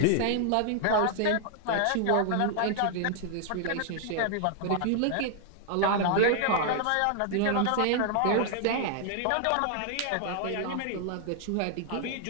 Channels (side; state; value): both; different; correlation 0.00